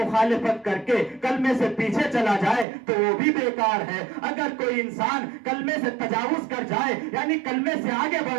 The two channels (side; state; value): left; drops out; at 2.7 s